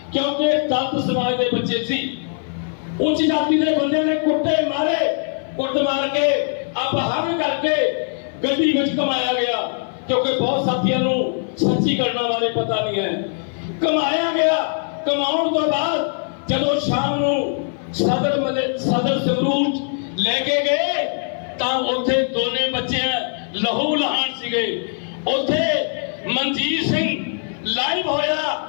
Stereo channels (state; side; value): silent; right; 55 dB below the other